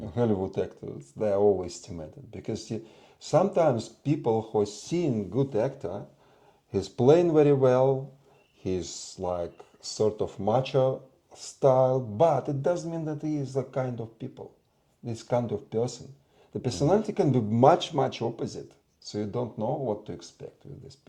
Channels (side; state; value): both; identical; correlation 1.00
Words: Hollywood actors, they are overestimated because sometimes people who seen good actor, he's playing very well, he's like sort of macho style, but it doesn't mean that he is a kind of people, this kind of person. The personality can be much, much opposite. So you don't know what to expect with these